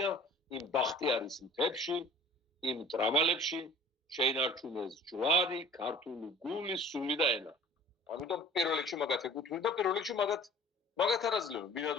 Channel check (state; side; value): normal; both; correlation 0.47